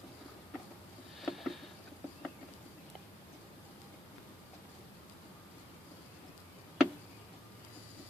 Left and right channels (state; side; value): normal; both; correlation 0.84